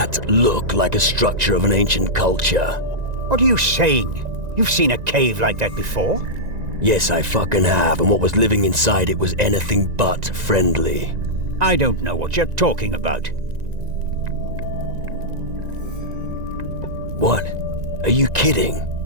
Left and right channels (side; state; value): left; late; 1.9 ms